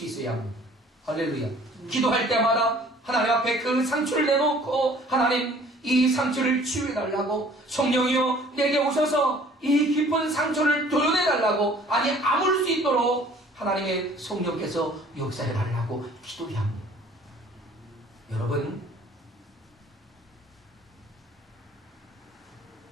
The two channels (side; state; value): both; normal; correlation 0.53